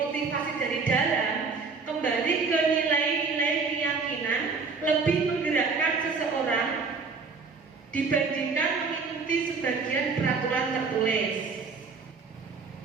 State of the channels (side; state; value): left; quieter; 4.7 dB